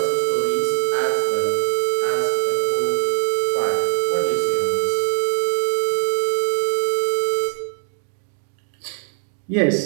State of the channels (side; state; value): left; silent; 65 dB below the other